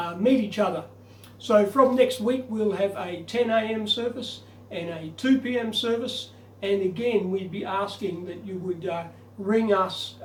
meet each other. So from next week we'll have a 10 a.m. service and a 2 p.m. service, and again we'd be asking that you would ring us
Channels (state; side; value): identical; both; correlation 1.00